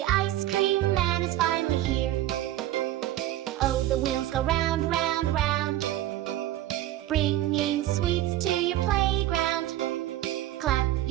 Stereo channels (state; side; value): quieter; left; 14.3 dB